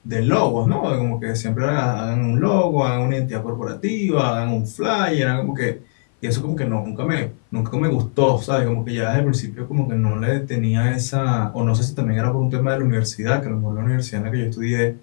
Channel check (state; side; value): silent; right; 56 dB below the other